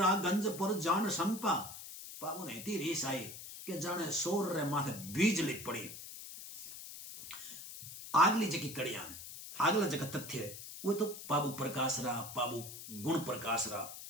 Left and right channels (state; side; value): noise; left; hiss, 11 dB below the sound